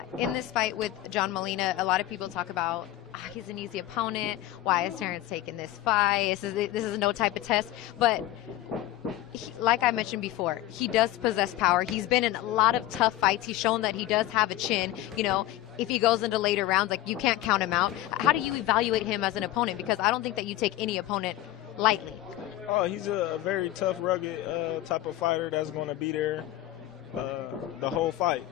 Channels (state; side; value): quieter; right; 14.6 dB